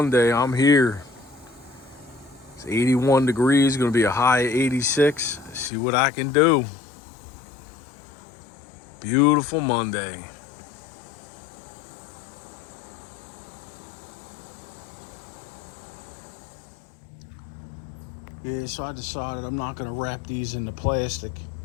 I'm here. It's 81 degrees, gonna be a high of 86. See what I can do. Beautiful Monday. Yeah, so I decided I'm not gonna wrap these in the plastic.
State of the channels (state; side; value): drops out; right; at 5.7 s